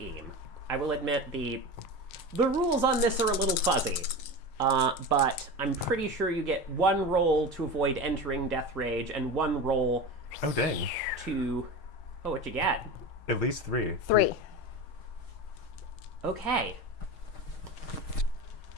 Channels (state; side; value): late; right; 6.4 ms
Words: I will admit the rules on this are a little fuzzy, but I'm pretty sure you get one roll to avoid entering death rage and one roll Oh, dang. to... Oh, what you get? At least 3. 3. Okay.